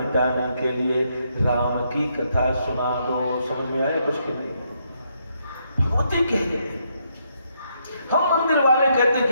के लिए राम की कथा सुना दो। समझ में आया कुछ की नहीं? भगवती कहती, हम मंदिर वाले कहते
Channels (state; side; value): inverted; both; correlation -0.76